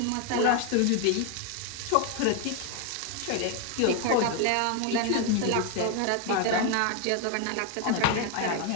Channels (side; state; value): both; different; correlation 0.01